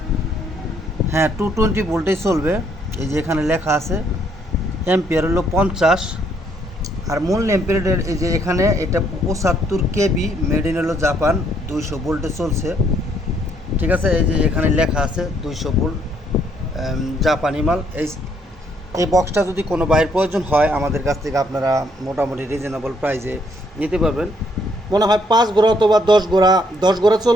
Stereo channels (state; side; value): normal; both; correlation 0.69